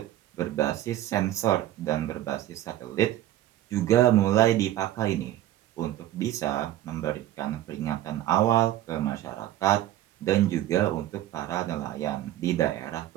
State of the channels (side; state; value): left; quieter; 13.5 dB